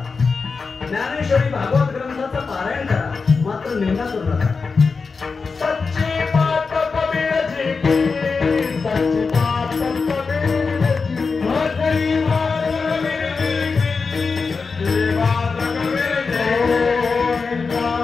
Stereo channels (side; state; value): right; quieter; 4.7 dB